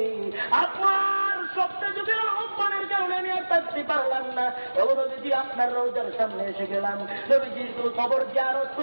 আপনার সপ্তাহ যুগের আহ্বানের কারণে আমি আর থাকতে পারলাম না। ও নবীজি আপনার রওজার সামনে এসে গেলাম। নবীজির খবর জিয়ারত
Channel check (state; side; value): inverted; both; correlation -1.00